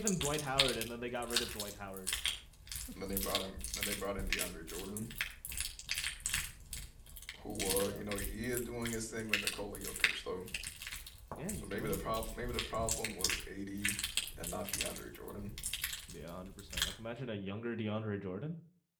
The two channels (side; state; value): both; identical; correlation 1.00